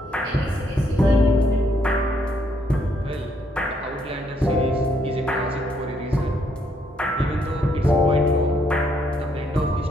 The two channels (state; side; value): normal; both; correlation 0.72